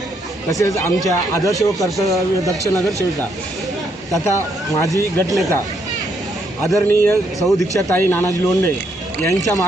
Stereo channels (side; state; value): both; normal; correlation 0.74